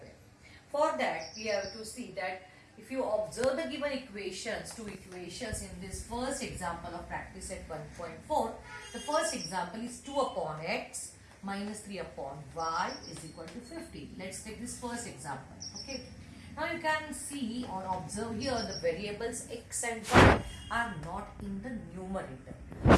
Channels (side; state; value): both; identical; correlation 1.00